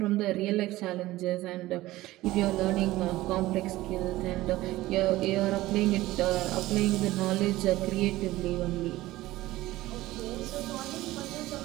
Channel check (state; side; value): quieter; left; 17.2 dB